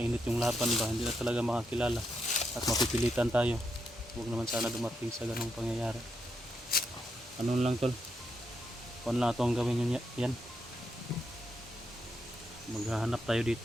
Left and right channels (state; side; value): normal; both; correlation 0.81